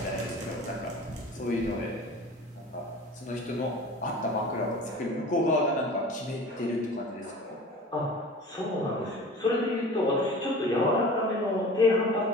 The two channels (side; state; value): both; normal; correlation 0.40